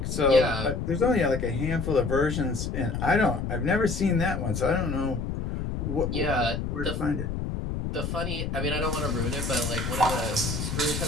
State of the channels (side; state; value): left; noise; rumble, 3 dB below the sound